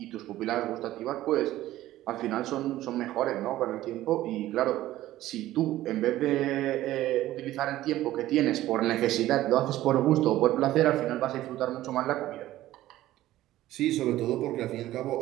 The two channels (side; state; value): left; quieter; 14.9 dB